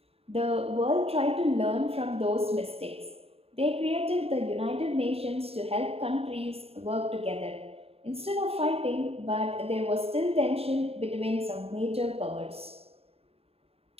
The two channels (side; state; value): left; late; 0.29 ms